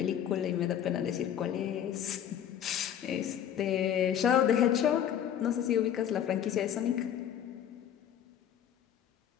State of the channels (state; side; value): quieter; right; 9.7 dB